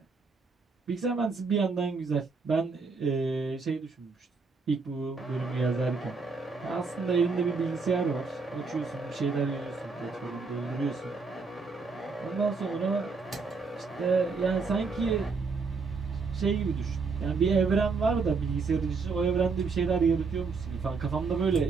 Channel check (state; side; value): quieter; left; 4.5 dB